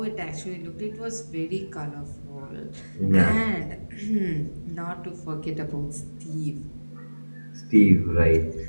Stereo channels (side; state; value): both; inverted; correlation -1.00